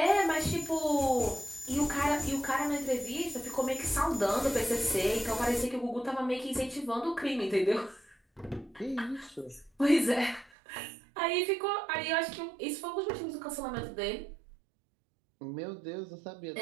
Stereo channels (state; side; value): drops out; left; at 10.5 s